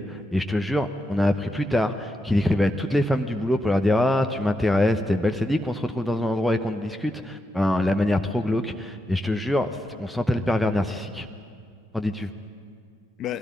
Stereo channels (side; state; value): both; normal; correlation 0.85